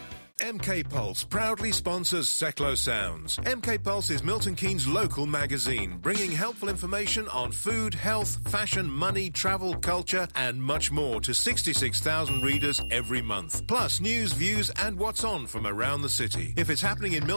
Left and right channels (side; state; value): both; inverted; correlation -1.00